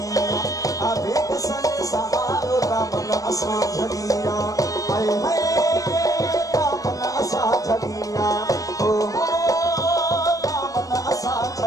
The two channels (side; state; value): right; late; 0.17 ms